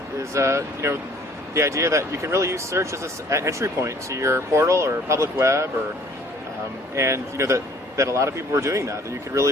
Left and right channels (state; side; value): normal; both; correlation 0.56